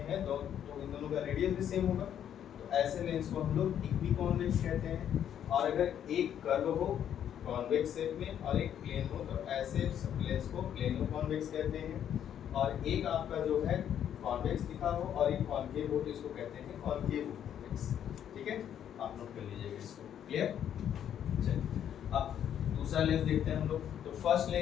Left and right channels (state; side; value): quieter; right; 9.7 dB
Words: तो इन दोनों का रेडियस भी सेम होगा, तो ऐसे लेंस को हम लोग इक्वी कॉन्वेक्स कहते हैं। और अगर एक कर्व हो कॉन्वेक्स शेप में और एक प्लेन हो, तो ऐसे लेंस को प्लेनो कॉन्वेक्स कहते हैं। और एक आपका जो है कॉन्वेक्स दिखा हो और एक कॉन्केव हो, तो इसको कहते हैं कॉन्केव कॉन्वेक्स, ठीक है, आप नोट कर लीजिएगा इसको, क्लियर। चलिए अब दूसरा लेंस देखते हैं हम लोग। तो फर्स्ट